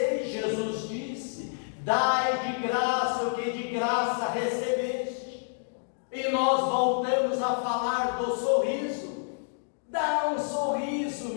Jesus disse: dai de graça o que de graça recebeste. E nós voltamos a falar do sorriso. Dá um sorriso,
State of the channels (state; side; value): silent; right; digital silence